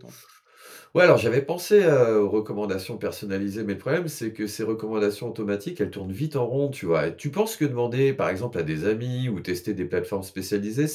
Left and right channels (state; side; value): identical; both; correlation 1.00